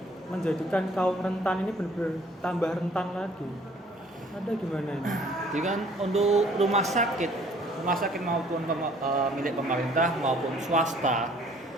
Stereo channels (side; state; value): both; normal; correlation 0.57